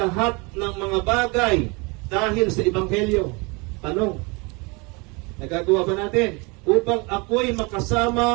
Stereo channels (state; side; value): quieter; left; 28.5 dB